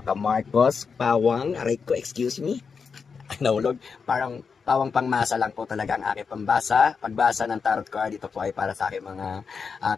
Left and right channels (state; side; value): quieter; right; 5.6 dB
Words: Pawang, aray ko, excuse me. Nahulog. Parang pawang pangmasa lang po talaga ang aking pambasa. Pagbasa ng tarot card, ito po ay para sa aking mga